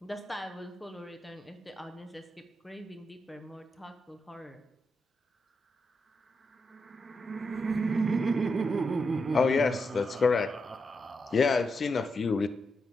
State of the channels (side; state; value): both; normal; correlation 0.85